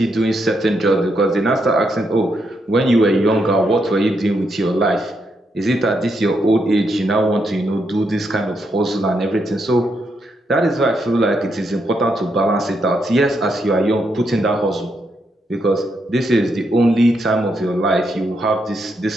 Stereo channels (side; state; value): both; normal; correlation 0.79